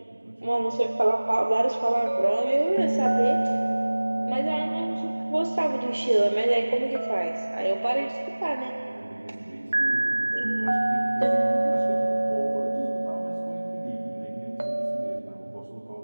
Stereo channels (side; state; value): both; inverted; correlation -1.00